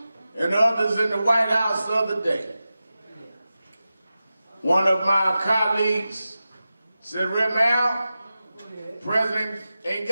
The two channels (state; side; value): inverted; both; correlation -0.94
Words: and others in the White House the other day. One of my colleagues said, Al, President ain't